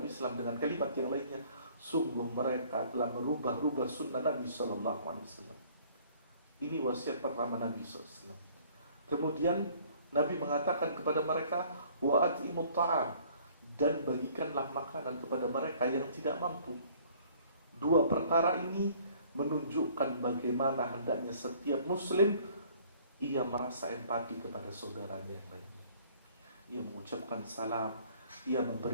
Islam dengan kalimat yang lainnya, sungguh mereka telah merubah sunnah Nabi SAW. Ini wasiat pertama Nabi SAW. Kemudian Nabi mengatakan kepada mereka, wa at'imut ta'am, dan bagikanlah makanan kepada mereka yang tidak mampu. Dua perkara ini menunjukkan bagaimana hendaknya setiap muslim ia merasa empati kepada saudaranya yang lainnya. Ia mengucapkan salam, ia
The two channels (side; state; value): both; inverted; correlation -0.56